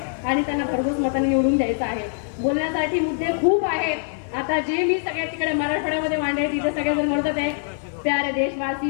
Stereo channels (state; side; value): silent; right; 63 dB below the other